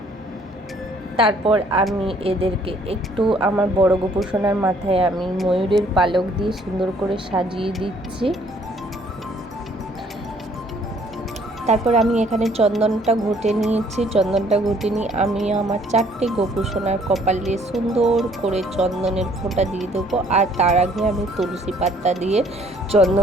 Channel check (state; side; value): normal; both; correlation 0.61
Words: তারপর আমি এদেরকে একটু আমার বড় গোপু সোনার মাথায় আমি ময়ূরের পালক দিয়ে সুন্দর করে সাজিয়ে দিচ্ছি। তারপর আমি এখানে চন্দনটা ঘুটে নিয়েছি। চন্দনটা ঘুটে নিয়ে আমি আমার 4টে গোপু সোনার কপালে সুন্দর করে চন্দনের ফোঁটা দিয়ে দেবো। আর তার আগে আমি তুলসী পাতা দিয়ে